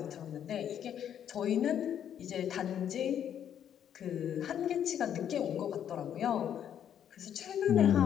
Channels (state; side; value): quieter; right; 9.5 dB